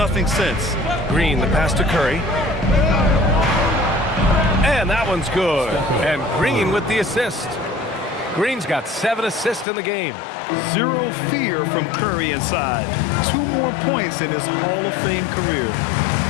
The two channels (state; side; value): drops out; right; at 9.7 s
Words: since. Green, the pass to Curry. And that one's good. And Green with the assist. Green's got 7 assists in the game. Zero fear from Curry inside. 2 more points in his Hall of Fame career.